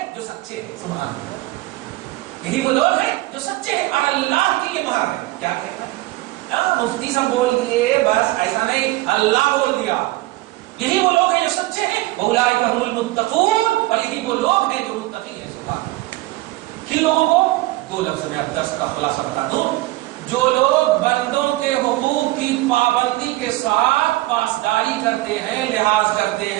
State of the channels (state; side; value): quieter; left; 19.0 dB